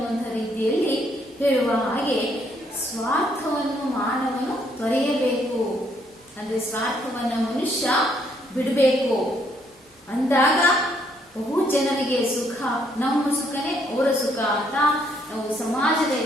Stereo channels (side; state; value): both; normal; correlation 0.70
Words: ರೀತಿಯಲ್ಲಿ ಹೇಳುವ ಹಾಗೆ ಸ್ವಾರ್ಥವನ್ನು ಮಾನವನು ತೊರೆಯಬೇಕು. ಅಂದ್ರೆ ಸ್ವಾರ್ಥವನ್ನ ಮನುಷ್ಯ ಬಿಡಬೇಕು. ಅಂದಾಗ ಬಹು ಜನರಿಗೆ ಸುಖ, ನಮ್ಮ ಸುಖನೇ ಅವರ ಸುಖ ಅಂತ ನಾವು ಸಮಾಜದ